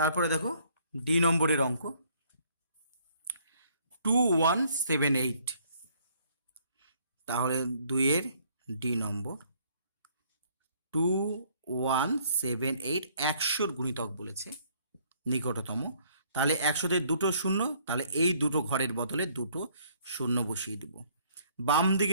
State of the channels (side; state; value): both; inverted; correlation -0.63